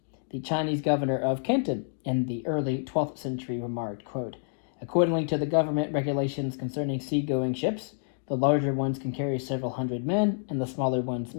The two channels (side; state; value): right; silent; digital silence